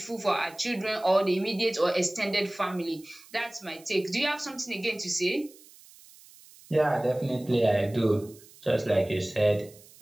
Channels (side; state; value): right; noise; hiss, 23 dB below the sound